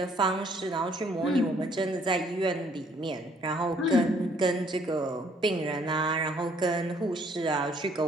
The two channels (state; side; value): normal; both; correlation 0.63